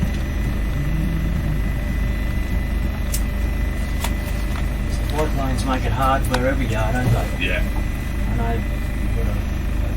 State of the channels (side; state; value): both; identical; correlation 1.00